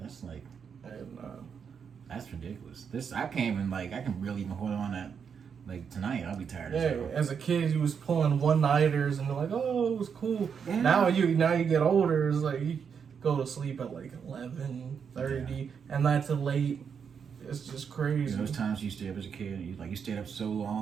like, that's ridiculous. I can't even I can really even hold on that. Like tonight, I'll be tired. As a kid, you was pulling one-nighters and they're like, oh, it was cool. Yeah. Now you get older, it's like you go to sleep at like 11:30, and that's late. It's just crazy. Those times you stayed up as a kid, you stayed up so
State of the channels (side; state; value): left; quieter; 6.8 dB